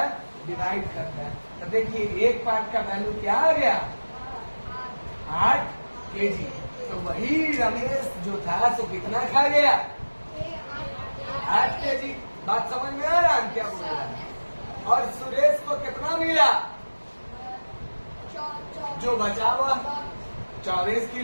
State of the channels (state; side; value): inverted; both; correlation -1.00